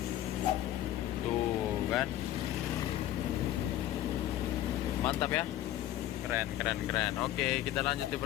Tuh kan. Mantap ya, keren. Oke, kita lanjut di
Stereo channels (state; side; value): quieter; right; 13.3 dB